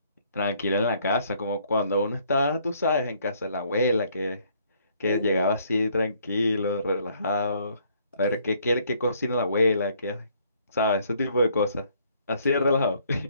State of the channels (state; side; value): inverted; both; correlation -0.65